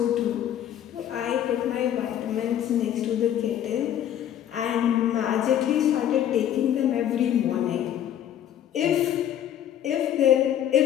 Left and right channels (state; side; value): quieter; right; 10.7 dB